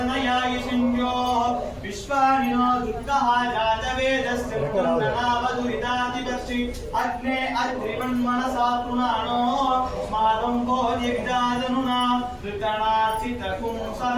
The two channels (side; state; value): both; identical; correlation 1.00